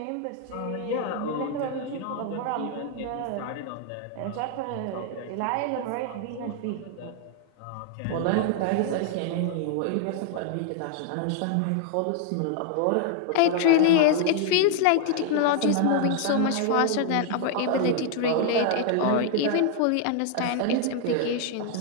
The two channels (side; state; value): both; different; correlation 0.00